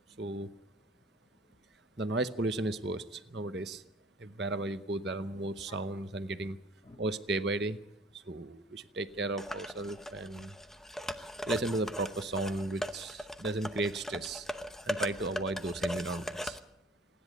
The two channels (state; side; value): normal; both; correlation 0.52